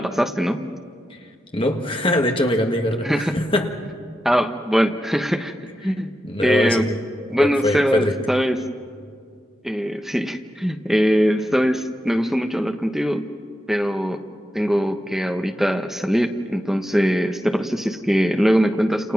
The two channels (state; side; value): normal; both; correlation 0.88